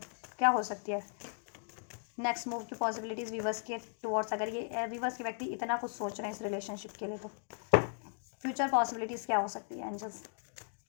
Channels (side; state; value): right; silent; 53 dB below the other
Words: क्या हो सकती है नेक्स्ट मूव की पॉसिबिलिटीज़ व्यूअर्स के टुवर्ड्स, अगर ये व्यूअर्स के व्यक्ति इतना कुछ सोच रहे हैं इस रिलेशनशिप के लिए, तो फ्यूचर पॉसिबिलिटीज़ क्या हो सकती है एंजल्स।